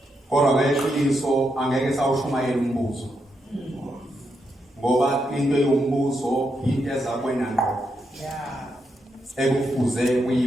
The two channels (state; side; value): normal; both; correlation 0.82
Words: Kodwa ngeqiniso angeke sawushumayela umbuzo. Ngoba into yombuzo into ezakwena ngqo. Ekufuze